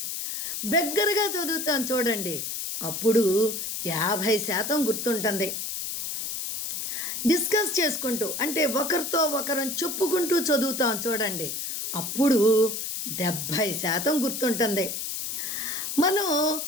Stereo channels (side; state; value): left; noise; hiss, 4 dB below the sound